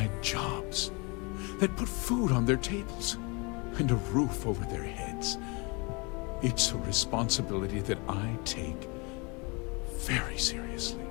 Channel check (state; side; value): quieter; right; 29.7 dB